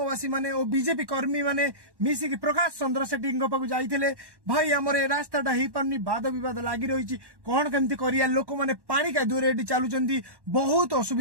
माने और बीजेपी कर्मी माने मिसिकी प्रकाश चंद्र सेठी पाखु जाइथिले। भाई हमर ए रास्ताटा ही पारनी वाद विवाद लागी रही कौन केमती करिया लोक माने पानी का दूर एटी चालुचंती बहुत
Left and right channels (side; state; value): left; late; 1.1 ms